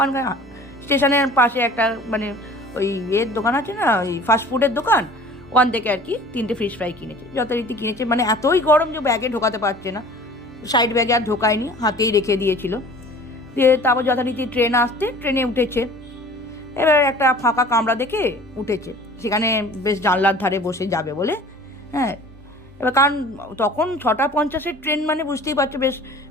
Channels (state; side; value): normal; both; correlation 0.46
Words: স্টেশনের পাশে একটা মানে ওই দোকান আছে না, ওই ফাস্টফুডের দোকান, ওখান থেকে আর কি 3টে ফিশ ফ্রাই কিনেছে। যথারীতি কিনেছে, মানে এতই গরম যে ব্যাগে ঢোকাতে পারছে না, সাইড ব্যাগে আর ঢোকায়নি, হাতেই রেখে দিয়েছিল। দিয়ে তারপর যথারীতি ট্রেন আসতে ট্রেনে উঠেছে। এবার একটা ফাঁকা কামরা দেখে উঠেছে, সেখানে বেশ জানলার ধারে বসে যাবে বলে। হ্যাঁ, এবার কারণ তখন 6:50 ট্রেন, মানে বুঝতেই পারছো বেশ